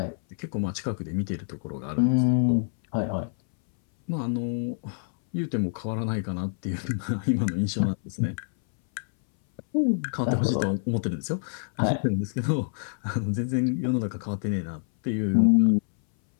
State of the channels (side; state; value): right; silent; 59 dB below the other